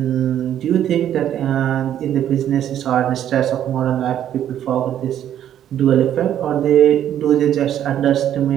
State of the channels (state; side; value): quieter; left; 10.7 dB